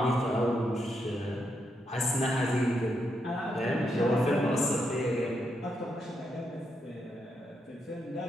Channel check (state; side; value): normal; both; correlation 0.81